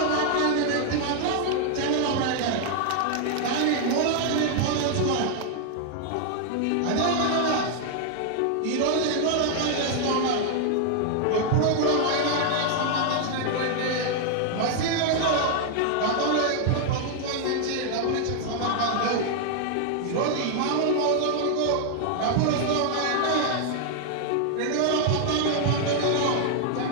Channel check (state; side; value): different; both; correlation 0.00